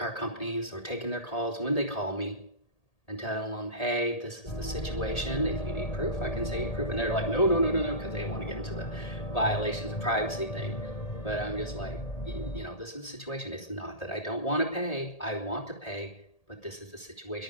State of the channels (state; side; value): late; right; 1.8 ms